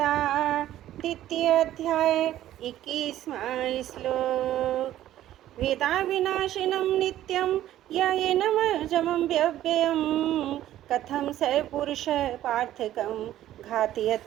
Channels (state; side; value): quieter; left; 13.1 dB